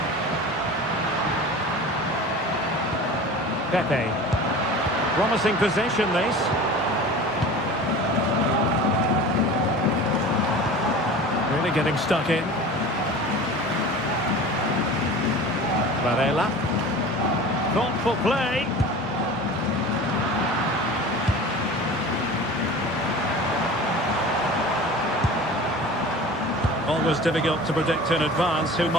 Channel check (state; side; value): normal; both; correlation 0.37